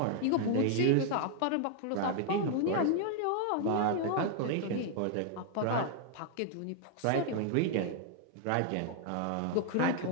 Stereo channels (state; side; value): different; both; correlation 0.00